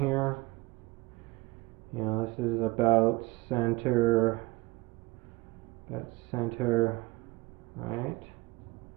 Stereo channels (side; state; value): left; quieter; 21.4 dB